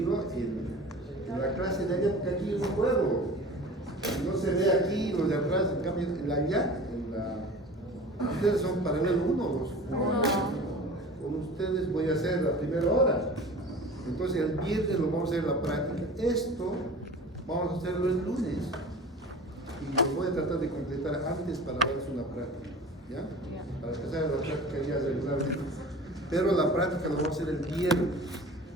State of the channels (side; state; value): both; normal; correlation 0.39